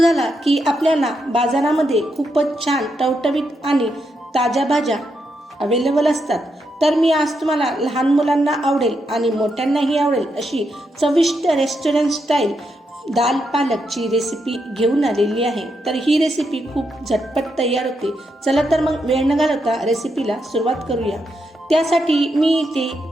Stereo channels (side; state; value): both; normal; correlation 0.82